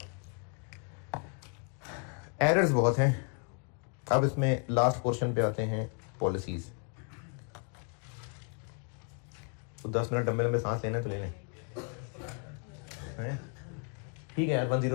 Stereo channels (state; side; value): quieter; right; 38.4 dB